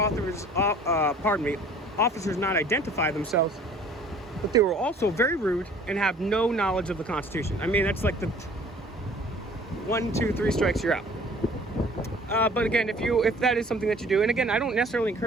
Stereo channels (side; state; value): both; normal; correlation 0.51